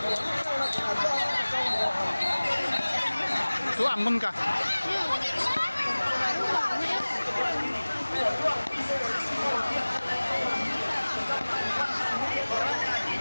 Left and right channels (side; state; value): both; inverted; correlation -1.00